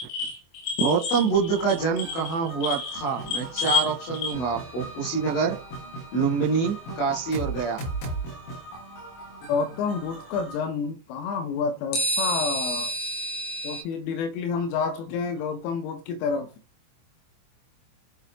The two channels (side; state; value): right; late; 24 ms